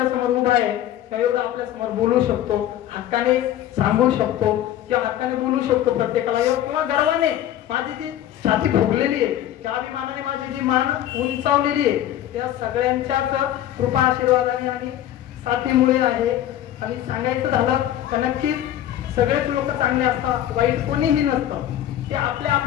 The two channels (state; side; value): quieter; right; 12.1 dB